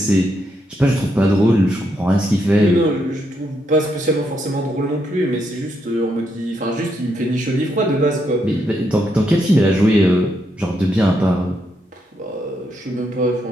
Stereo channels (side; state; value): both; normal; correlation 0.79